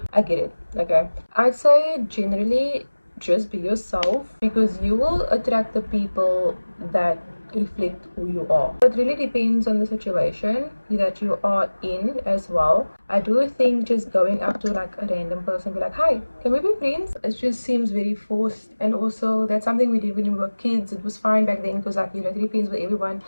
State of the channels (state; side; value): inverted; both; correlation -1.00